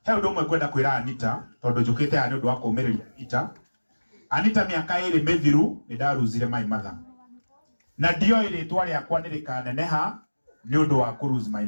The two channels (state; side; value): inverted; both; correlation -1.00